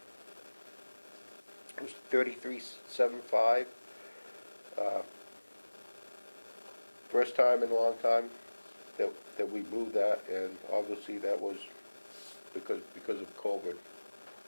it was 3375. First time in a long time that we moved that, and obviously that was because of COVID.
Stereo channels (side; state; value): both; inverted; correlation -1.00